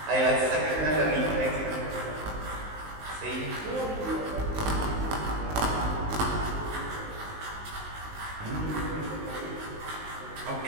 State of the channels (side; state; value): left; late; 19 ms